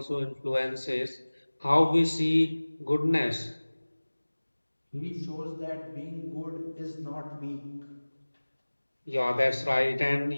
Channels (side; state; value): both; inverted; correlation -1.00